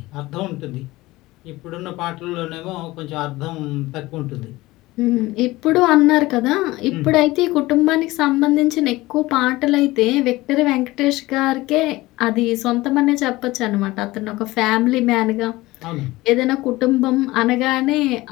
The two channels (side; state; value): right; quieter; 19.2 dB